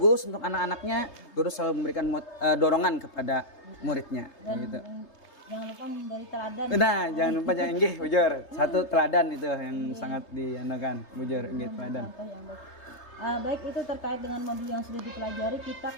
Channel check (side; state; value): right; late; 3.3 ms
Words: untuk anak-anaknya, guru selalu memberikan dorongan kepada muridnya. Gitu. Jangan lupa memberi teladan. Nah, jangan lupa nggih, bujur. Satu teladan itu yang sangat diandalkan, bujur nggih teladan. Baik, itu terkait dengan modul yang sudah dipelajari.